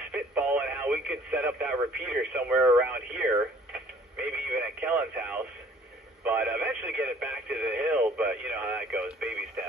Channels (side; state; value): both; normal; correlation 0.54